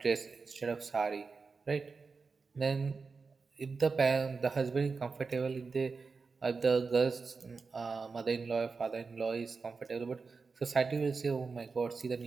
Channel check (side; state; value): left; quieter; 4.6 dB